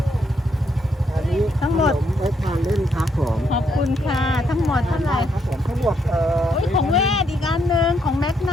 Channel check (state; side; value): normal; both; correlation 0.75